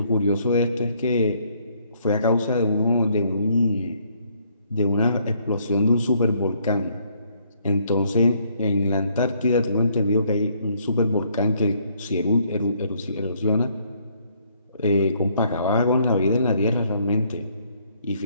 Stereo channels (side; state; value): both; inverted; correlation -0.67